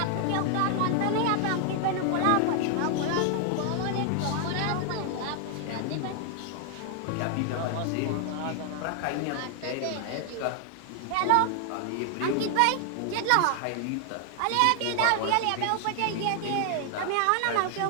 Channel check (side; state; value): both; different; correlation 0.00